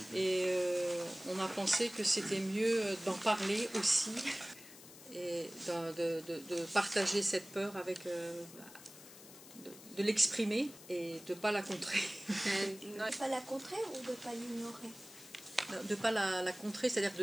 et on a pensé que c'était mieux d'en parler aussi et de partager cette peur avec de l'exprimer et de ne pas la contrer. De ne pas la contrer ou de ne pas l'ignorer? De ne pas la contrer, c'est-à-dire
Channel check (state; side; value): noise; left; hiss, 18 dB below the sound